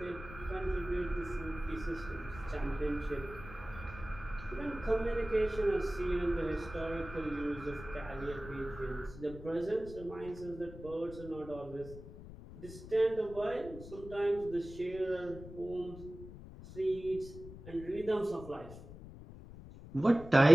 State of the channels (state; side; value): noise; left; rumble, 14 dB below the sound